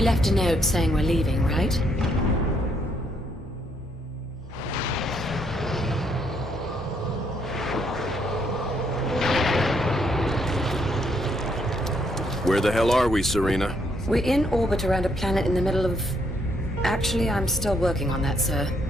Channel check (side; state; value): both; normal; correlation 0.72